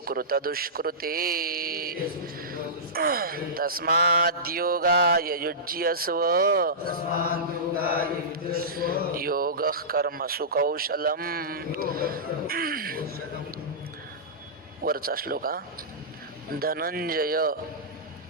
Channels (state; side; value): normal; both; correlation -0.17